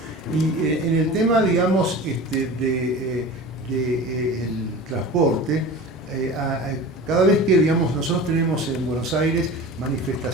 Y en el tema, digamos, el transporte, cada vez que, digamos, nosotros tenemos en Buenos Aires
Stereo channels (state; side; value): normal; both; correlation 0.35